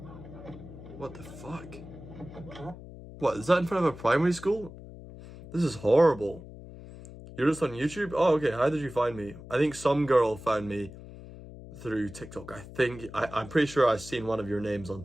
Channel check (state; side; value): noise; left; hum, 15 dB below the sound